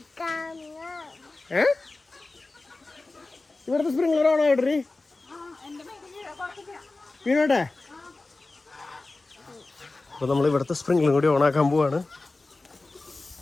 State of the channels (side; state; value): right; quieter; 3.3 dB